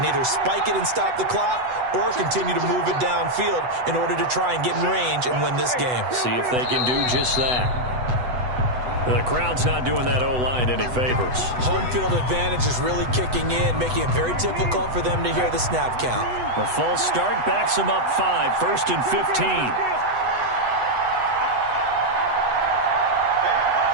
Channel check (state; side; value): late; left; 8.0 ms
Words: either spike it and stop the clock or continue to move it downfield in order to try and get in range and win this game. See if they can do just that. The crowd's not doing that O-line any favors. Home field advantage is really kicking in, making it very difficult for them to hear the snap count. The false start backs them up 5, 1st and 15.